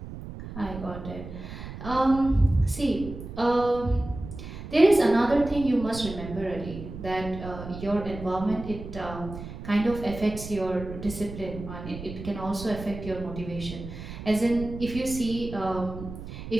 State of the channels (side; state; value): right; noise; rumble, 11 dB below the sound